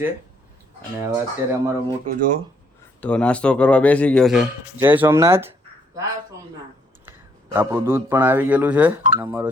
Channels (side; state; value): both; normal; correlation 0.69